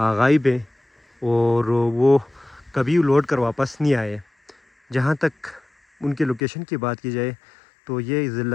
ہے اور وہ کبھی لوٹ کر واپس نہیں آئے. جہاں تک ان کے لوکیشن کی بات کی جائے تو یہ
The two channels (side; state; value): right; drops out; at 6.4 s